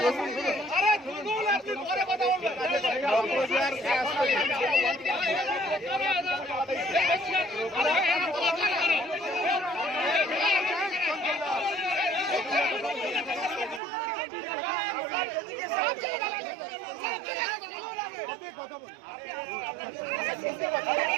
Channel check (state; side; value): drops out; left; at 13.8 s